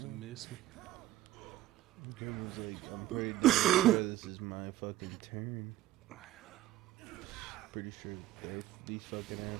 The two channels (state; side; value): quieter; left; 14.5 dB